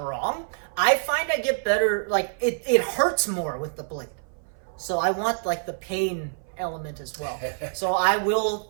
wrong. I find I get better, like, it hurts more with the blade. So I want, like, the pain element as well. So I will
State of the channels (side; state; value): left; silent; 59 dB below the other